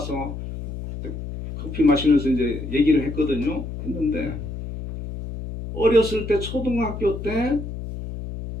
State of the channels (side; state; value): left; noise; hum, 8 dB below the sound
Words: 커피 마시면서 이제 얘기를 했거든요. 했는데 어렸을 때 초등학교